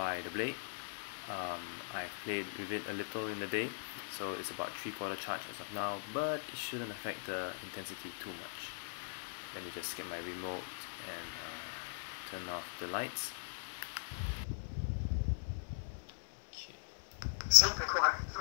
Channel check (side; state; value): right; silent; 51 dB below the other